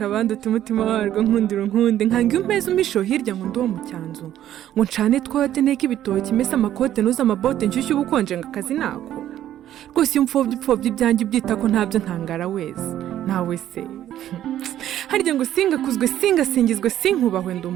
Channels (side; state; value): left; quieter; 11.9 dB